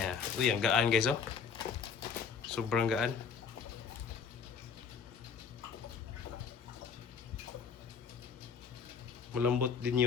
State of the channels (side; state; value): right; quieter; 6.3 dB